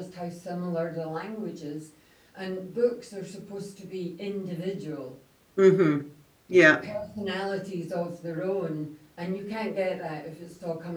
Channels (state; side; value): identical; both; correlation 1.00